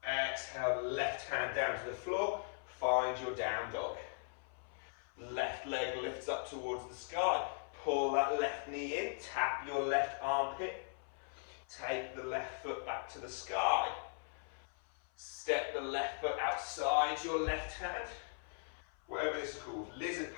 Exhale, left hand down to the floor. Find your down dog. Left leg lifts up towards the sky. Pull that left knee in. Tap your left armpit. Take the left foot back to the sky. Step the left foot outside your left hand. Whatever this is called. Lizard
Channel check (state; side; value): silent; right; 52 dB below the other